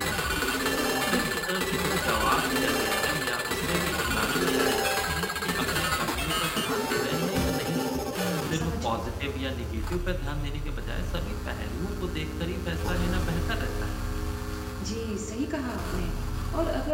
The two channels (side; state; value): both; identical; correlation 1.00